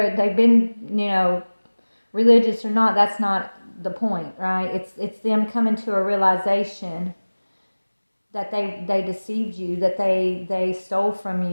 they've been, religious or not, that's not the point, right? It's them coming to a realization that they deceived you, that they stole from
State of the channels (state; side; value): inverted; both; correlation -1.00